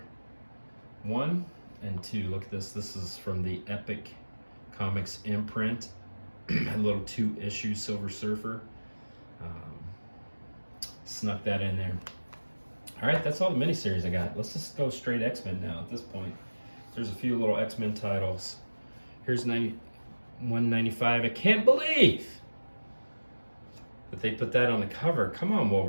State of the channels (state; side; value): inverted; both; correlation -1.00